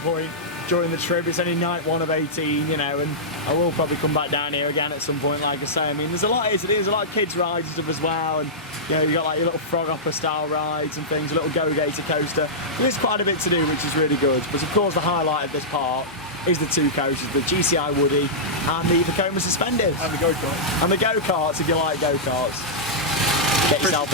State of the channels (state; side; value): normal; both; correlation -0.12